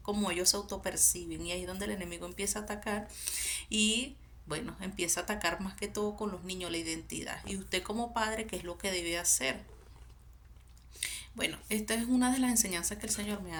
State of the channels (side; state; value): both; identical; correlation 1.00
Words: como ellos se autoperciben y ahí es donde el enemigo empieza a atacar y bueno, empieza a atacar más que todo con los niños la identidad. Y usted como padre, ¿qué es lo que debe hacer? Bueno, esta es una de las enseñanzas que el Señor me